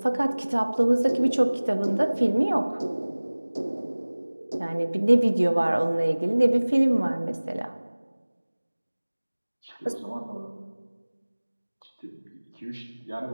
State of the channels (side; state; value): both; inverted; correlation -1.00